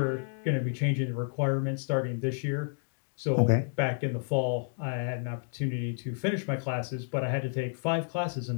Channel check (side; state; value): right; silent; digital silence